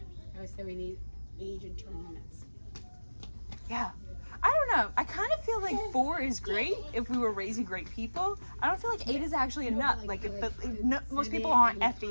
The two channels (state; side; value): inverted; both; correlation -1.00